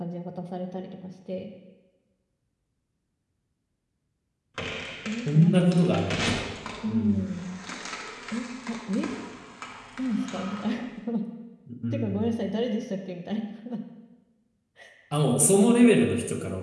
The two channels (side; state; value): both; identical; correlation 1.00